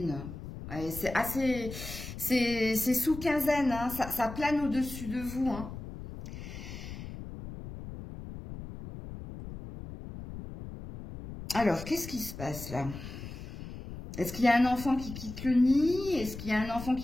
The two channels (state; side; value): noise; left; rumble, 11 dB below the sound